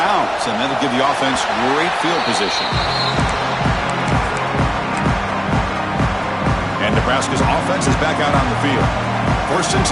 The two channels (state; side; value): identical; both; correlation 1.00